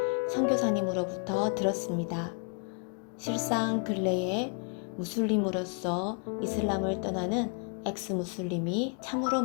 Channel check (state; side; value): quieter; right; 39.8 dB